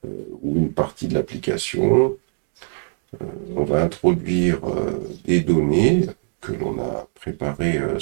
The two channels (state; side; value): silent; left; 64 dB below the other